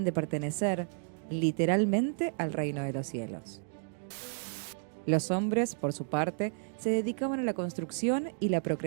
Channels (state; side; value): silent; left; digital silence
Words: de pertenecer, literalmente, al reino de los cielos. Los hombres, por su parte, se dedicaban a la construcción y la